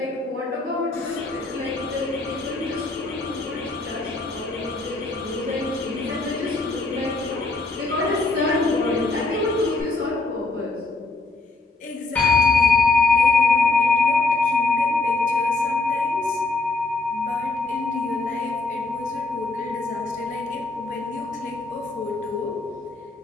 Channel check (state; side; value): quieter; right; 3.4 dB